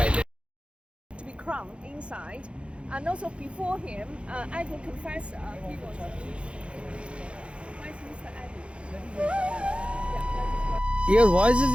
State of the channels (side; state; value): left; late; 0.059 ms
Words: To be crowned inside, and also before him, Anglican confessor, he was Westminster Abbey. Your voice is